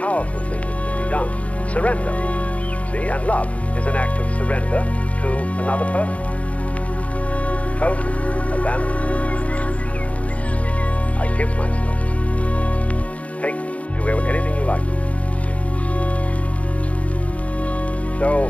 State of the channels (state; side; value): late; right; 0.066 ms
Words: thing that can be done. Surrender. See, and love is an act of surrender to another person. Total abandonment. I give myself. Take, do anything you like. So,